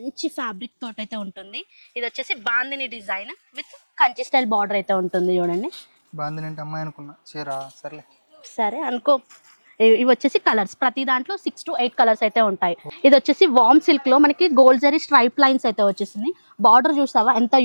ఫ్యాబ్రిక్ తోటి అయితే ఉంటుంది. ఇది వచ్చేసి bandhani design with Kanchi style border అయితే ఉంటుంది. చూడండి, బాందిని అంటే అమ్మాయి అనుకున్నా, చీరా సర్లే. సరే అనుకో. ఇవి వచ్చేసి కలర్స్, ప్రతి దాంట్లో 6 to 8 కలర్స్ అయితే ఉంటాయి. ఇది వచ్చేసి వామ్ సిల్క్ లో మనకి గోల్డ్ జరీ స్ట్రైప్ లైన్స్ అయితే వచ్చేసింది. బార్డర్ చూసావా ఎంత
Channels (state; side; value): inverted; both; correlation -1.00